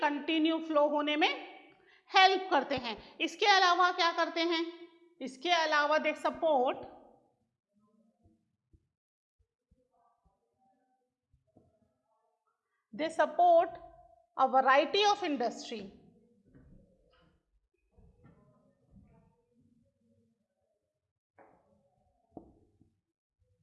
कंटिन्यू फ्लो होने में हेल्प करते हैं। इसके अलावा क्या करते हैं? इसके अलावा they support a variety of industry.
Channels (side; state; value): both; identical; correlation 1.00